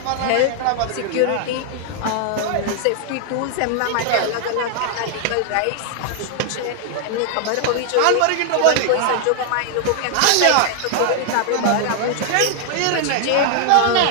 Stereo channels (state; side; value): different; both; correlation 0.00